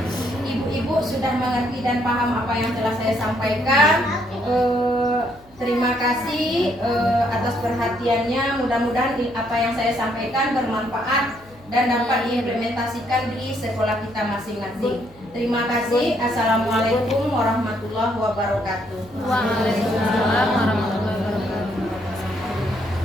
ibu-ibu sudah mengerti dan paham apa yang telah saya sampaikan. Terima kasih atas perhatiannya. Mudah-mudahan apa yang saya sampaikan bermanfaat dan dapat diimplementasikan di sekolah kita masing-masing. Terima kasih. Assalamualaikum warahmatullahi wabarakatuh. Waalaikumsalam warahmatullahi wabarakatuh.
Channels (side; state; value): left; noise; hum, 28 dB below the sound